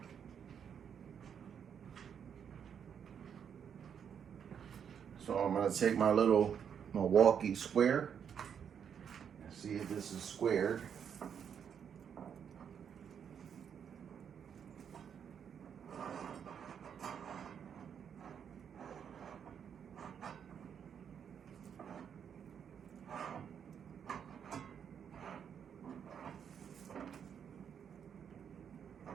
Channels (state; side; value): quieter; left; 7.9 dB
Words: So I'm gonna take my little Milwaukee square and see if this is squared.